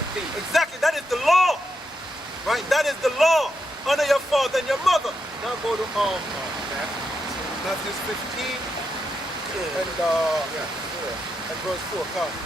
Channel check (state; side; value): normal; both; correlation 0.83